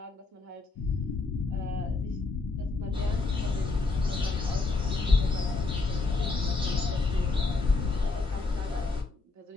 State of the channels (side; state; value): right; quieter; 3.8 dB